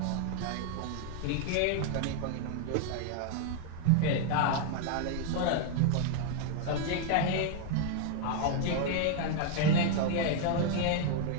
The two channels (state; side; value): different; both; correlation 0.00